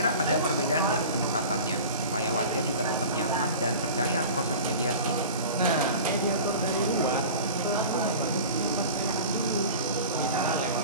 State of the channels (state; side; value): inverted; both; correlation -0.37